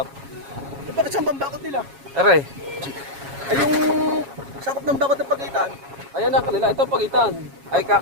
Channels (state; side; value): late; left; 7.3 ms